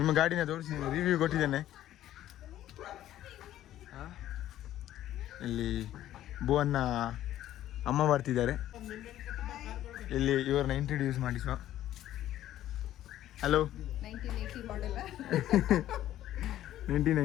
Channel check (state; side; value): quieter; right; 12.9 dB